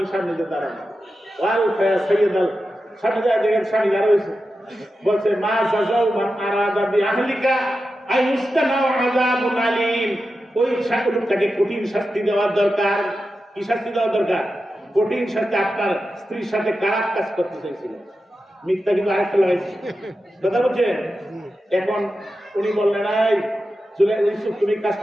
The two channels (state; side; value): normal; both; correlation 0.91